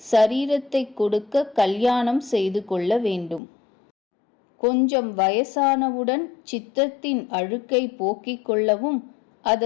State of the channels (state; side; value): drops out; right; at 3.4 s